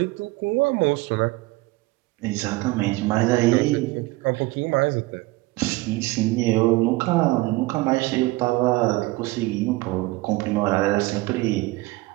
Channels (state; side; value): quieter; left; 21.3 dB